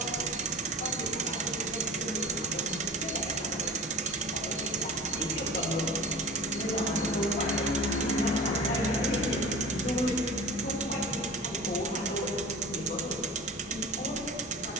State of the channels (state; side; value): normal; both; correlation 0.36